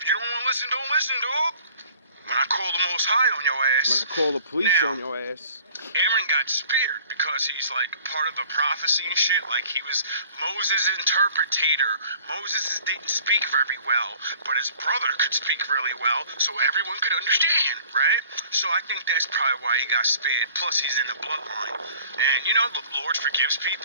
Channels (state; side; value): inverted; both; correlation -0.51